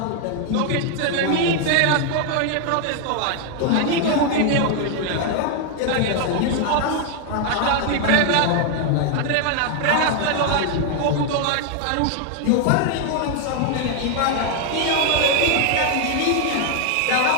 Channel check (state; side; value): different; both; correlation 0.00